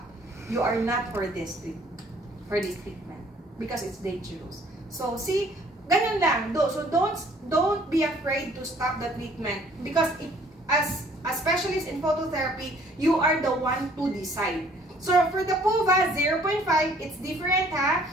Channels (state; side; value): normal; both; correlation 0.58